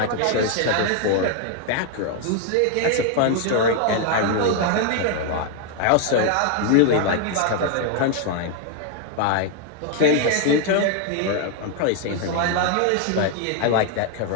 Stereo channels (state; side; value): different; both; correlation 0.00